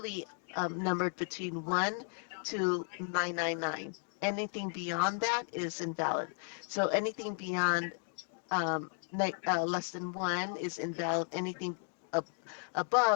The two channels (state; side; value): silent; right; 55 dB below the other